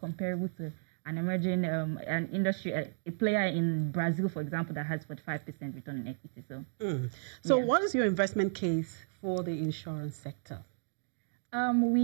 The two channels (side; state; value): left; silent; digital silence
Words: to an emerging an industry, a player in Brazil, for example, that has 45% return on equity. So what is your investment case for the insurance sector?